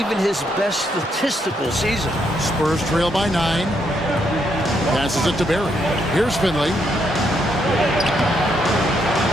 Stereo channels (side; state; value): both; normal; correlation 0.76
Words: his best statistical season. Spurs trail by 9. Passes it to Barry. Here's Finley.